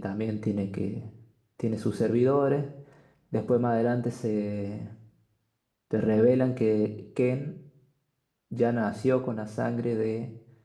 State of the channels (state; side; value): identical; both; correlation 1.00